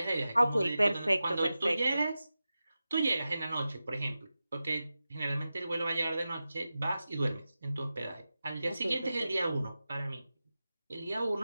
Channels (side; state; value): both; inverted; correlation -0.93